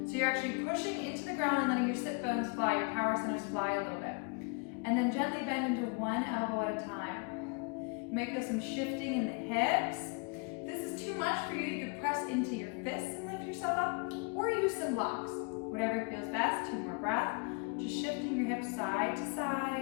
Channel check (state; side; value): quieter; right; 34.4 dB